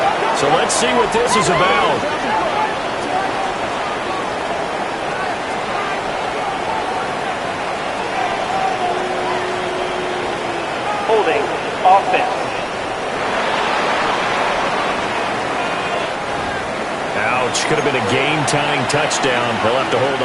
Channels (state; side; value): identical; both; correlation 1.00